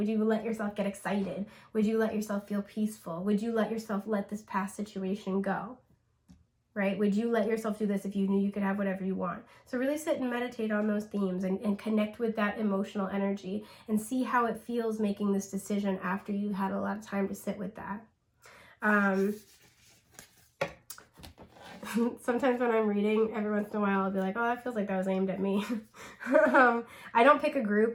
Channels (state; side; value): identical; both; correlation 1.00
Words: you let yourself get excited? Would you let yourself feel peaceful? Would you let yourself let this past situation go? Right? Would you let yourself do this if you knew you could have whatever you want? So really sit and meditate on those themes, and connect with that emotional energy, and see how it feels making this decision after you had a lot of time to sit with that. Sometimes when I'm reading, every once in a while, I'll be like, oh, that feels like that was aimed at me. I don't pick a